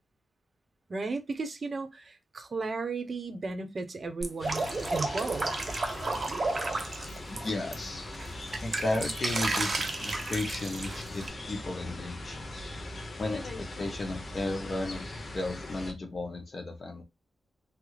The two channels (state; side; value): normal; both; correlation 0.89